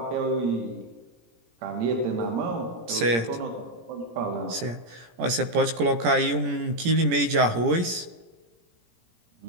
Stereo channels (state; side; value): late; left; 17 ms